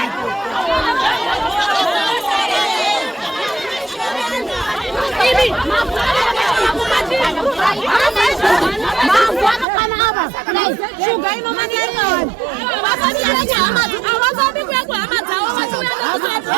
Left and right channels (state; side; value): drops out; left; at 9.7 s